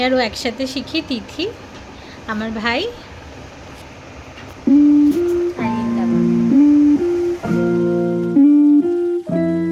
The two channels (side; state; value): both; identical; correlation 1.00